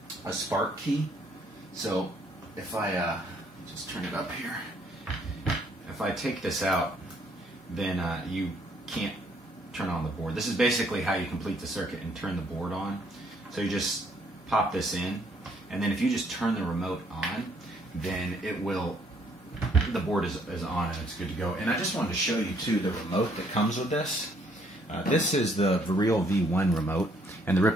spark key. So if I just turn it up here, if I take this out, then you can't turn on the board. This is basically how you complete the circuit and turn the board on. So you just pop this in, and then if you just turn the remote on, then it will, the board is on and it's good to go. And I just wanted to show you too the remote that comes with this. This is the Viril V1 remote, and the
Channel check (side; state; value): both; normal; correlation 0.66